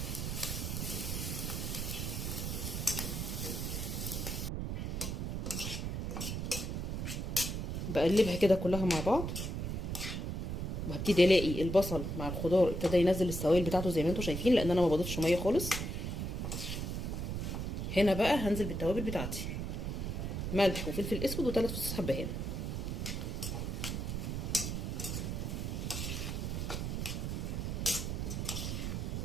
بقلبها كده كلها مع بعض، وهبتدي الاقي البصل مع الخضار ابتدى ينزل السوائل بتاعته زي ما انتم شايفين، لان انا ما بضيفش ميه خالص. هنا بقى هنزل بالتوابل بتاعتي، ملح وفلفل اسود و3 فصوص حبهان.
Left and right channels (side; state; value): right; noise; rumble, 2 dB below the sound